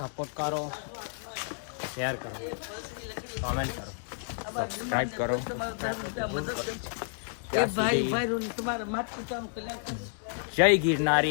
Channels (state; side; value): silent; right; digital silence